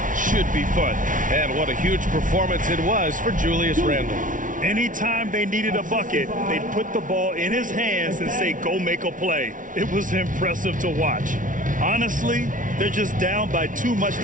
should be fun. And what a huge performance it was for Julius Randall. Anytime they needed a bucket, they'd put the ball in his hands and say, go make a play. It was impressive to watch. Honestly, they're just down by too much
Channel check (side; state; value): left; late; 0.38 ms